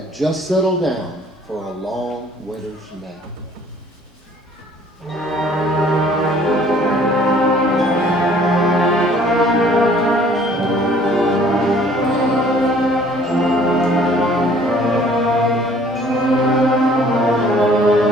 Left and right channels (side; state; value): both; normal; correlation 0.56